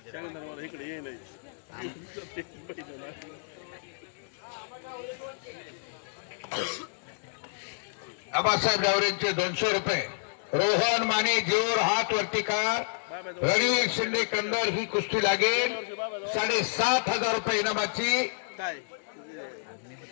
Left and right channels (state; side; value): silent; right; digital silence